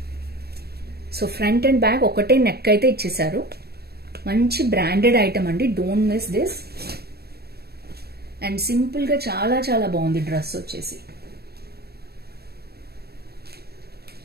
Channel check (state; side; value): late; left; 0.46 ms